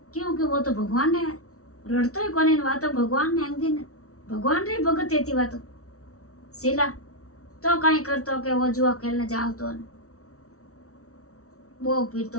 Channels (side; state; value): right; late; 0.64 ms